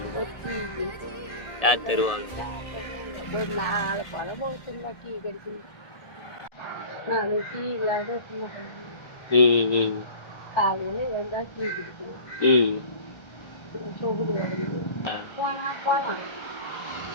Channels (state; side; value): late; right; 1.3 ms